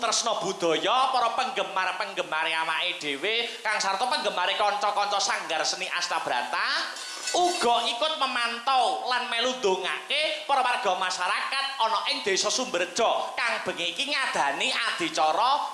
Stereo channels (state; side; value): identical; both; correlation 1.00